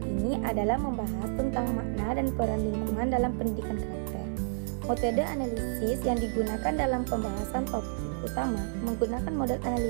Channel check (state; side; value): silent; left; digital silence